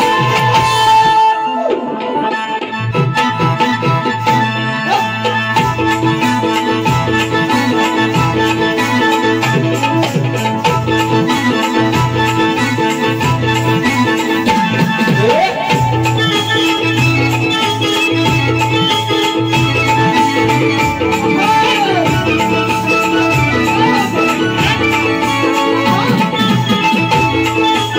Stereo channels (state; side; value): identical; both; correlation 1.00